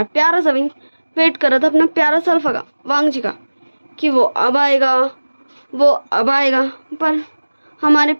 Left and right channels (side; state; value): both; inverted; correlation -1.00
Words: प्यारा सा विंग वेट कर रहा था अपना प्यारा सा अल्फा का, वांग जी का, कि वो अब आएगा, पर हमारे